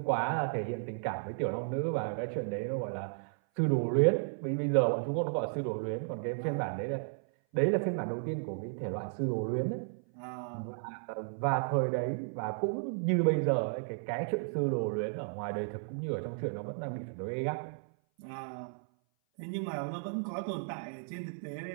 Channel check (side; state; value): left; silent; 55 dB below the other